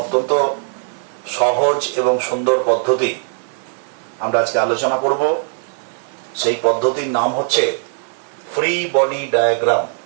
অত্যন্ত সহজ এবং সুন্দর পদ্ধতি আমরা আজকে আলোচনা করব। সেই পদ্ধতির নাম হচ্ছে free body diagram.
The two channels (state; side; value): silent; left; 66 dB below the other